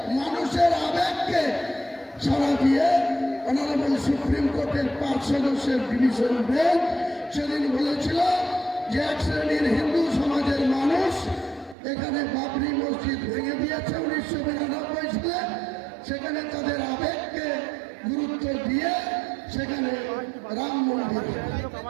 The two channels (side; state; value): left; drops out; at 11.8 s